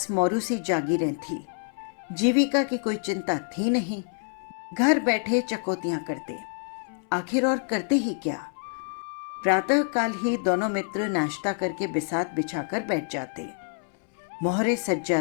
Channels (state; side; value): silent; right; 60 dB below the other